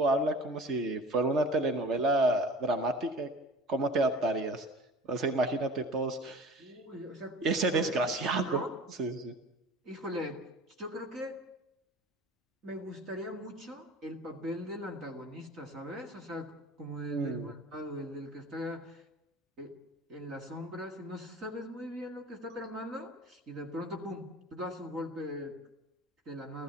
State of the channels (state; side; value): normal; both; correlation 0.41